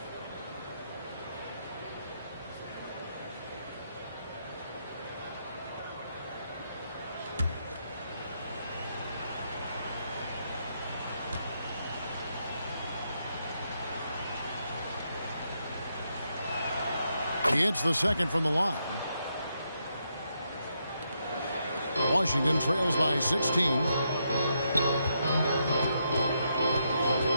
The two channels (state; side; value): inverted; both; correlation -0.80